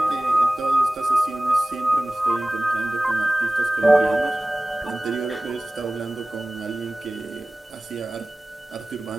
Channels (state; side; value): normal; both; correlation 0.97